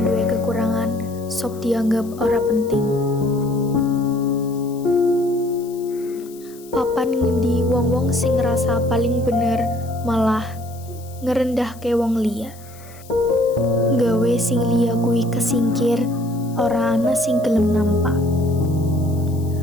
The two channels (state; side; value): noise; left; hiss, 22 dB below the sound